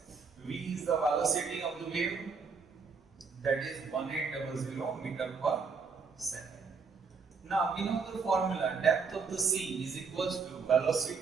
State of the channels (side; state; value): left; quieter; 5.3 dB